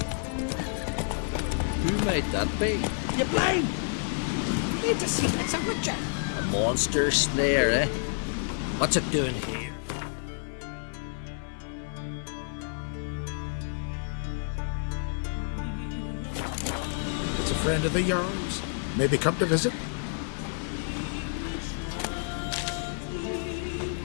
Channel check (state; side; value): silent; right; 58 dB below the other